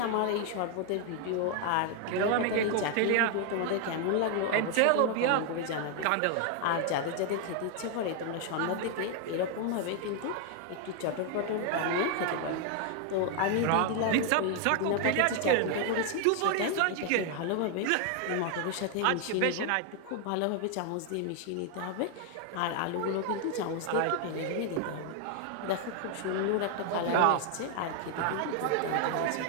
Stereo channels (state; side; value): different; both; correlation 0.00